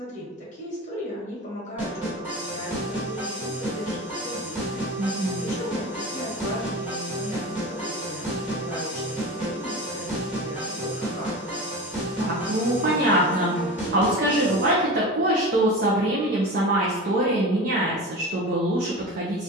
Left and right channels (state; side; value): normal; both; correlation 0.30